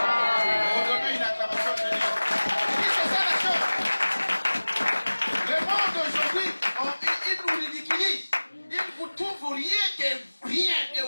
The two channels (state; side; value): inverted; both; correlation -1.00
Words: On donne une acclamation de Dieu. C'est ça la chose. Le monde aujourd'hui, il nous ridiculise. Il ne vous trouve rien que rien, et